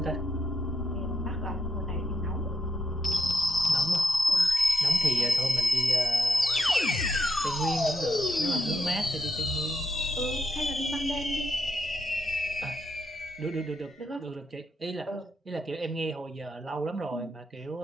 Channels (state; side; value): normal; both; correlation 0.80